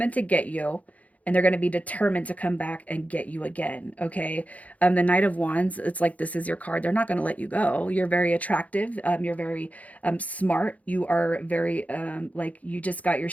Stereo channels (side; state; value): right; late; 0.070 ms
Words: to get you, and they're going to be determined to come back and get you again, okay? The Knight of Wands, it's like this is your card. They're not going to let you go. You're very attractive. You're very smart. You are very like you just got your